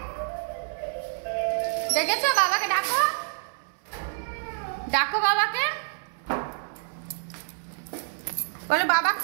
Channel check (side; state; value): left; silent; 60 dB below the other